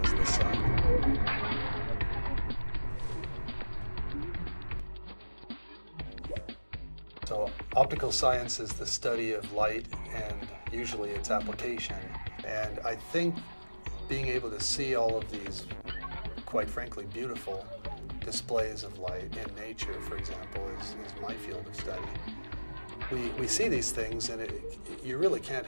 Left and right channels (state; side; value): inverted; both; correlation -1.00